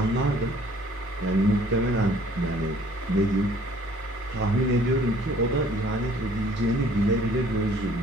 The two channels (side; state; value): both; normal; correlation 0.56